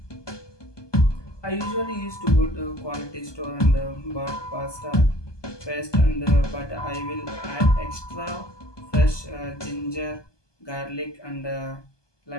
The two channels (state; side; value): late; right; 1.2 ms